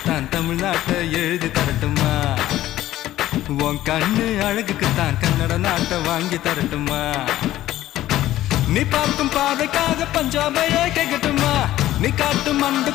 தமிழ்நாட்டை எழுதி தரட்டுமா? உன் கண்ணு அழகுக்குத்தான் கன்னட நாட்டை வாங்கி தரட்டுமா? நீ பார்க்கும் பார்வைக்காக பஞ்சாபையே கேட்கட்டுமா? நீ காட்டும்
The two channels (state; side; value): quieter; right; 14.4 dB